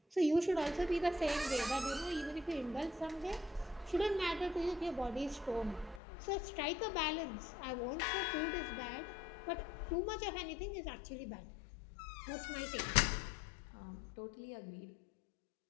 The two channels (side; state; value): right; drops out; at 6.0 s